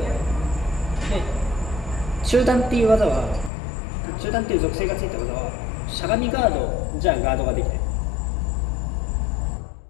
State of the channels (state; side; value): drops out; right; at 3.5 s